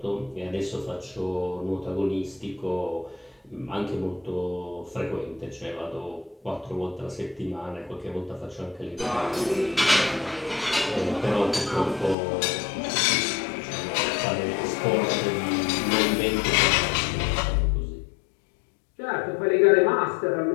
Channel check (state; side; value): drops out; right; at 12.2 s